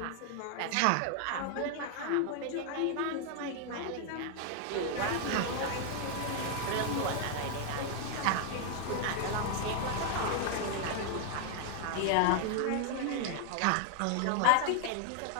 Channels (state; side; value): different; both; correlation 0.00